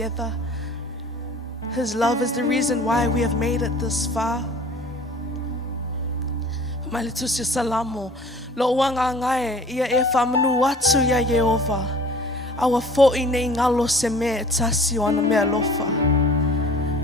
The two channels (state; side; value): normal; both; correlation 0.47